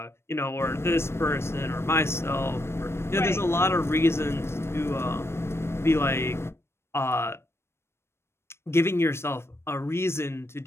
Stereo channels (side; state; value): right; late; 0.12 ms